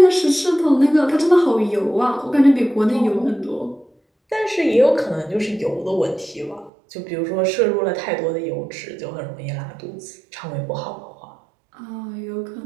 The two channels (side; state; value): left; drops out; at 6.7 s